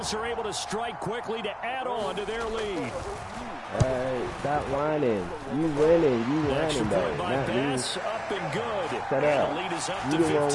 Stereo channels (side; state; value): both; identical; correlation 1.00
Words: are able to strike quickly to add on to their lead. Hey, stop whining. You winning. You whining, though. Not me. Up and good. Shut up. The lead is up You to the one